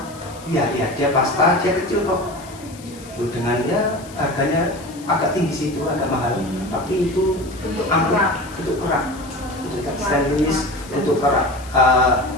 Iya, dia pasta, dia kecil kok. Tuh, dengan ya harganya agak tinggi sih itu, agak mahal. Tapi itu Untuk ampuh, kerak. untuk kerak. Untuk stainless, untuk kerak.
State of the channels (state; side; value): noise; left; hiss, 20 dB below the sound